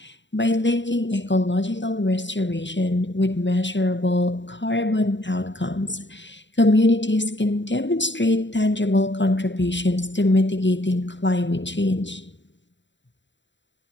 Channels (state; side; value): late; right; 0.53 ms